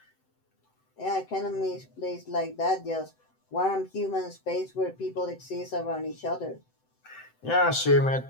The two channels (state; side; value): late; right; 7.8 ms